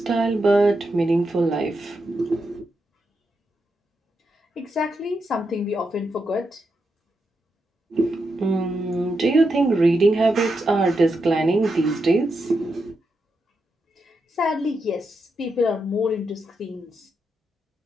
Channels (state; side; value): normal; both; correlation 0.84